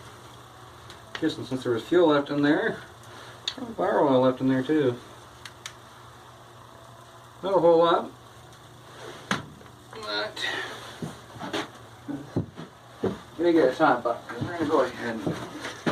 just since there was fuel left in there, there's bar oil left in there too. Not a whole lot, but I'm gonna get a top buck. We're gonna go ahead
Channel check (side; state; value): both; identical; correlation 1.00